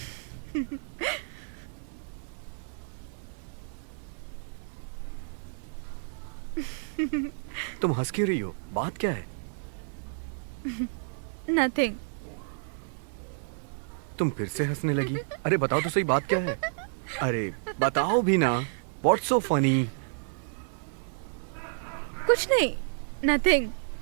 तुम हंस क्यों रही हो? बात क्या है? Nothing. तुम फिर से हंसने लगी. अरे बताओ तो सही, बात क्या है? अरे बताओ भी ना. What's so funny? कुछ नहीं. Nothing.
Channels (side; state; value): left; silent; 58 dB below the other